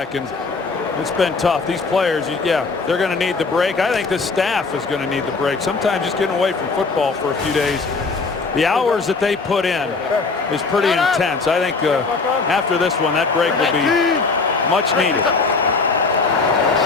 And it's been tough. These players, yeah, they're going to need the break. I think this staff is going to need the break. Sometimes just getting away from football for a few days. The hours that they put in is pretty intense. I think after this one, that break will be much needed.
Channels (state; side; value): quieter; right; 4.2 dB